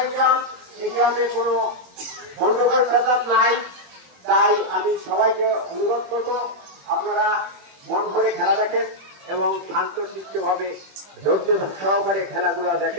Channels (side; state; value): left; late; 21 ms